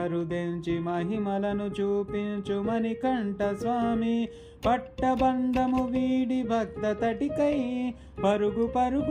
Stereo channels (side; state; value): both; identical; correlation 1.00